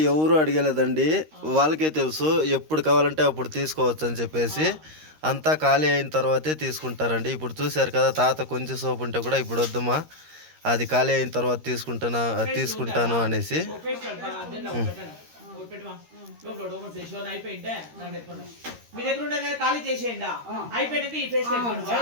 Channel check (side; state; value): left; late; 13 ms